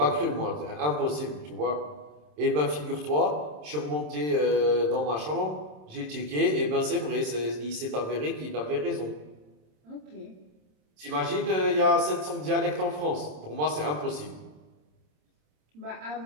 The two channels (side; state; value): left; late; 27 ms